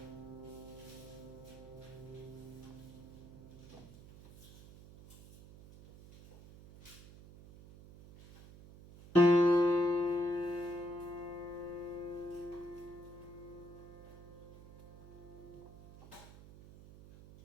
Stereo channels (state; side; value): noise; right; hum, 18 dB below the sound